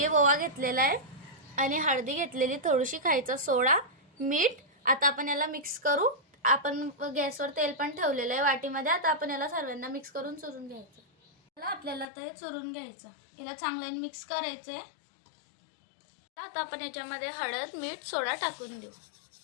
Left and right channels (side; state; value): right; drops out; at 12.1 s